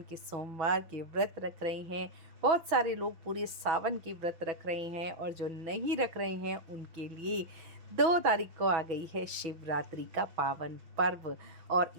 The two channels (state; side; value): late; left; 6.2 ms